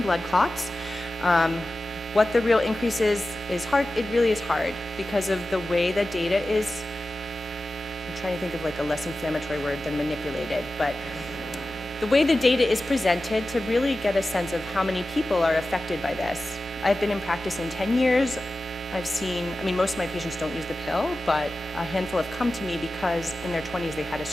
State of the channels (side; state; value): both; normal; correlation 0.94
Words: blood clots. What the real increase is hard. It really is hard because of the way that data is trying to think of like a less inflammatory word than manipulated, but the way the data is presented to really get a sense of how many people are affected by this. I've been in practice in 10 years. I've seen, I mean, most of my patients don't use the pill, but a handful have come to me because in their 20s they had a